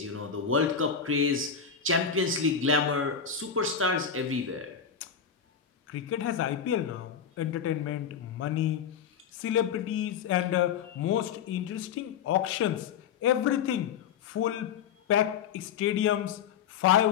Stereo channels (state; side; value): quieter; right; 7.2 dB